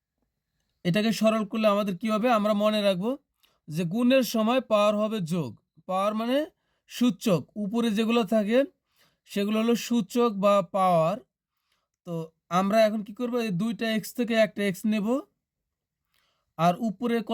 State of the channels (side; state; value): both; identical; correlation 1.00